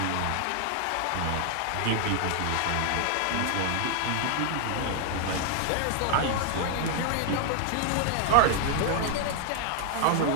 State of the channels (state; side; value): different; both; correlation 0.00